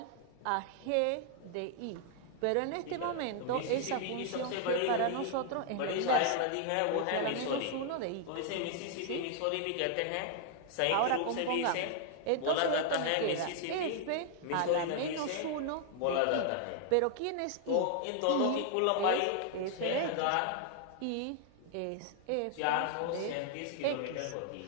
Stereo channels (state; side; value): different; both; correlation 0.00